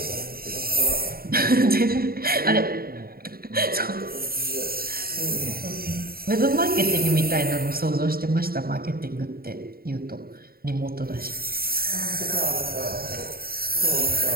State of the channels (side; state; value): left; late; 0.43 ms